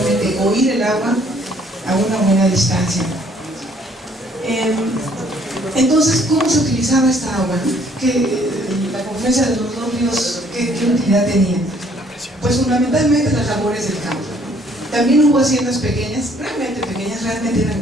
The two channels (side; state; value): both; normal; correlation 0.62